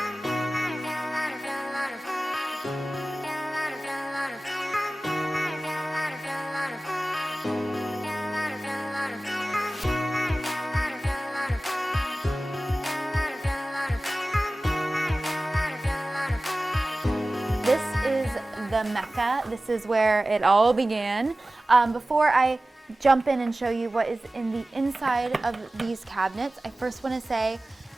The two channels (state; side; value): normal; both; correlation 0.97